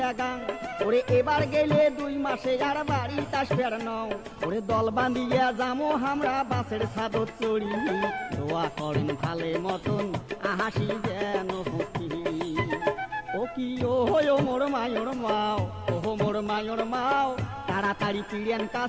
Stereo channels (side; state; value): both; identical; correlation 1.00